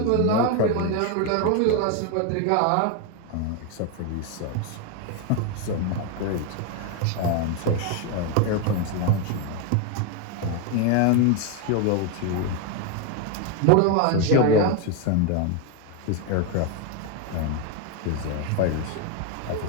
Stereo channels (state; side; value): different; both; correlation 0.02